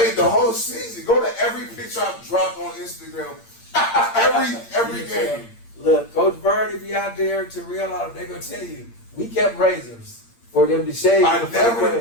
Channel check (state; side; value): late; right; 8.7 ms